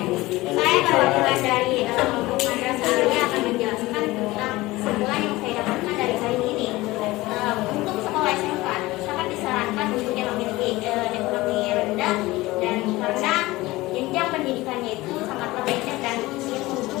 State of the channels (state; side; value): quieter; right; 19.4 dB